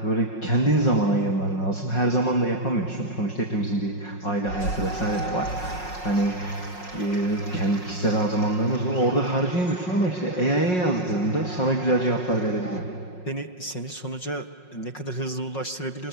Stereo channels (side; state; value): right; late; 5.5 ms